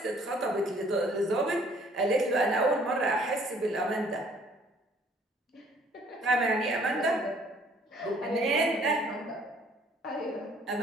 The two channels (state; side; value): normal; both; correlation 0.59